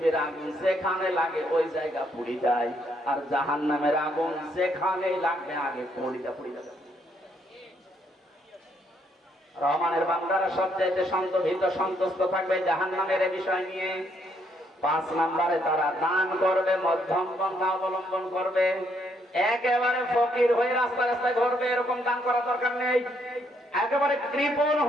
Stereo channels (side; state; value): both; normal; correlation 0.72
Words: আগুন যেখানে লাগে ওই জায়গা পুড়ে যায়, আর জাহান্নামের আগুন যেখানে লাগবে আগে পুড়ে যায়। রহমানের বান্দারা সবচাইতে সন্তুষ্ট থাকবে জাহান্নামের এই বিষয় নিয়ে। 5 নম্বরে তারা দান করবে, মধ্যম পন্থা অবলম্বন করবে। একেবারে ফকির হয়ে রাস্তায় রাস্তায় ঘুরবে, এরকম দান করা দরকার নেই। একেবারে কৃপণ